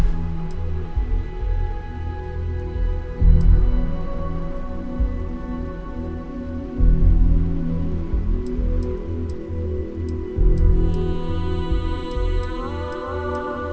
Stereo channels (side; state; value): both; identical; correlation 1.00